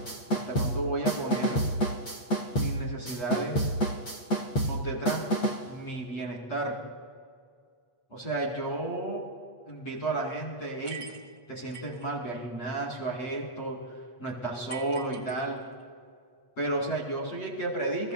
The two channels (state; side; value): late; right; 8.3 ms